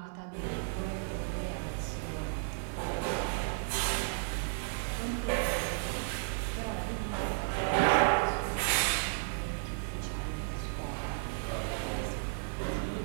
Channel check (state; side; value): silent; left; 55 dB below the other